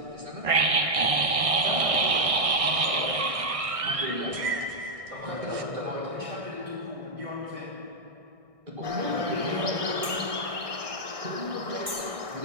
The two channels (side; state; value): left; late; 1.6 ms